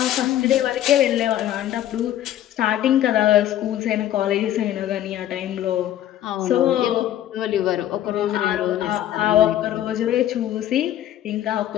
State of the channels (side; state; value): right; quieter; 12.3 dB